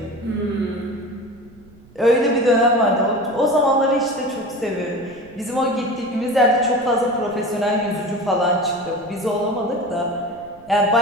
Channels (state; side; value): noise; right; rumble, 25 dB below the sound